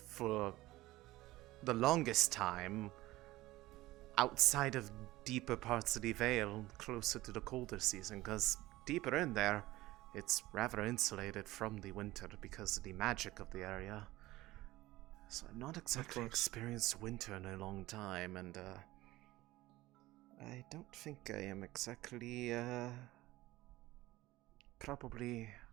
the longest time, outside of deeper parts of the Vale, closer to the colder season, because deeper in there, it's rather insulated from the winter because of the magic of the area. So I've not exactly experienced winter in a long time, and I don't think I am exactly, probably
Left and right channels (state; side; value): quieter; left; 18.0 dB